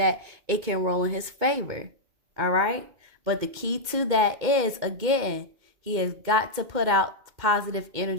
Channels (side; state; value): left; late; 2.1 ms